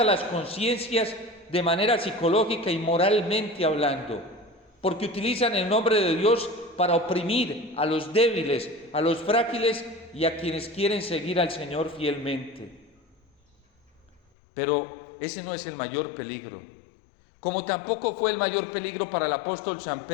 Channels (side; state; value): right; drops out; at 14.2 s